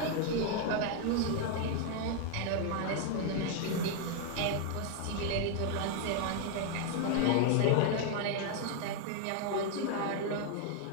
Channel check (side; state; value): both; different; correlation 0.00